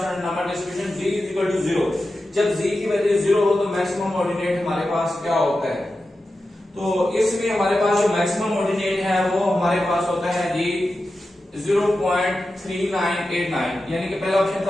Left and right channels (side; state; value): both; normal; correlation 0.92